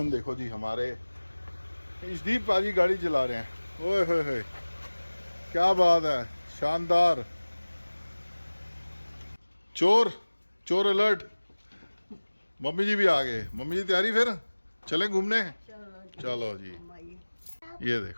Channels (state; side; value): inverted; both; correlation -1.00